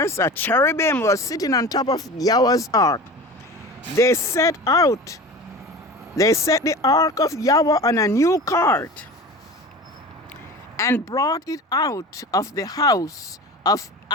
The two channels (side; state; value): both; normal; correlation 0.34